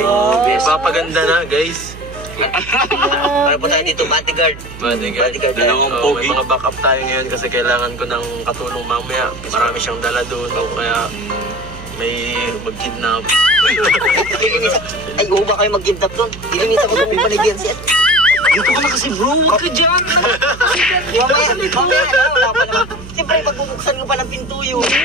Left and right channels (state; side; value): noise; right; hum, 15 dB below the sound